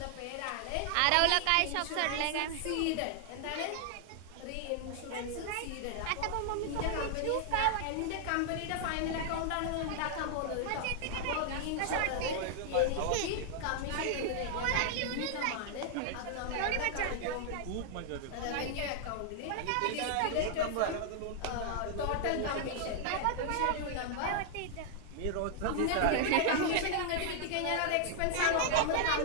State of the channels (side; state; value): both; different; correlation 0.00